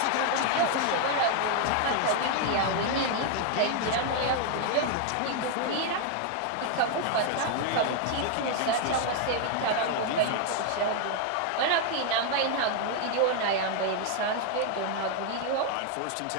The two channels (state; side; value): different; both; correlation 0.00